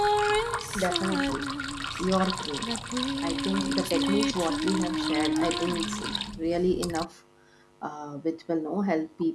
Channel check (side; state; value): both; identical; correlation 1.00